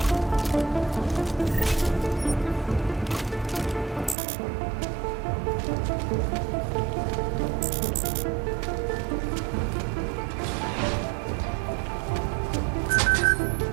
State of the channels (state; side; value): drops out; left; at 4.2 s